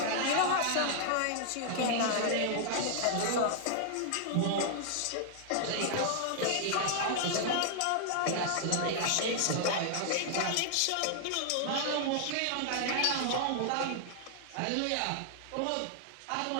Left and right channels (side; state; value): both; different; correlation -0.01